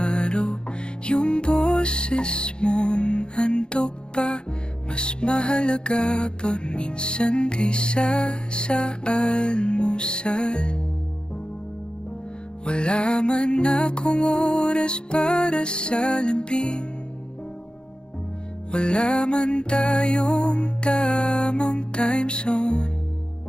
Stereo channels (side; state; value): right; late; 0.050 ms